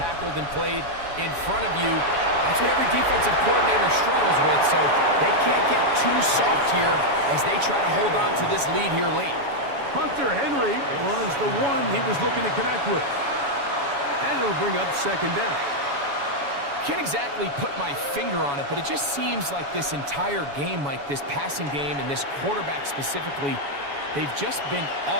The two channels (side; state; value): left; late; 7.1 ms